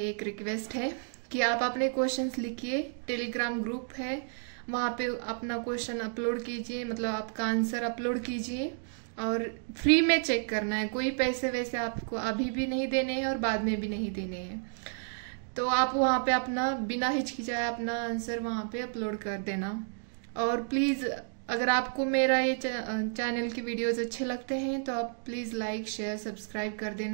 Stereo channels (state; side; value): silent; left; digital silence